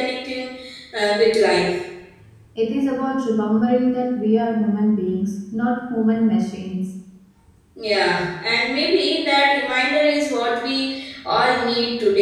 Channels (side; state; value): both; identical; correlation 1.00